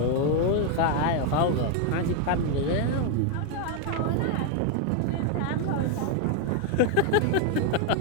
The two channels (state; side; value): different; both; correlation 0.01